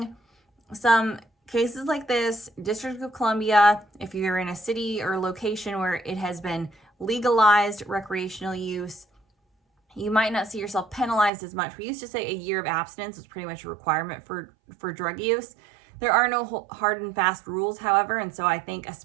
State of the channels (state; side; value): drops out; left; at 11.3 s